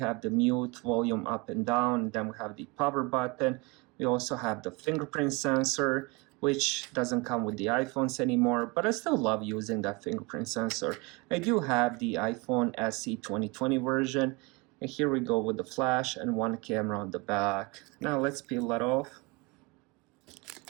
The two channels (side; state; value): left; quieter; 26.4 dB